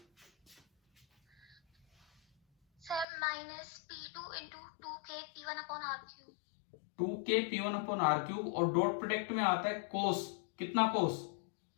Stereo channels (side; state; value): right; drops out; at 3.1 s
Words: Sir minus P2 into 2K P1 upon R3। 2K P1 upon R3, और डॉट प्रोडक्ट में आता है कोस। कितना कोस?